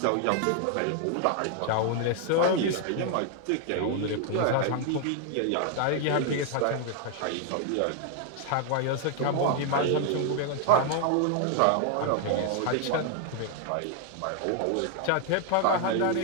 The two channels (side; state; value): both; different; correlation 0.00